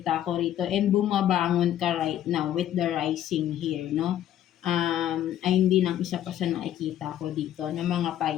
ko rito and bumabangon ka right now with the rising here, 'no. Ay hindi lang isa pa sa nakikita ko dito ng mga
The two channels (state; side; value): quieter; right; 11.6 dB